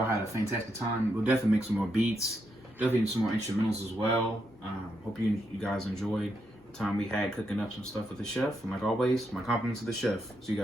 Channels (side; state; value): both; normal; correlation 0.81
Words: had a fantastic time. We'll definitely make some more beats, definitely some more instrumentals as well. Hope you guys enjoyed the time we had cooking up some stuff with the chef. And like always, my compliments to the chef. See you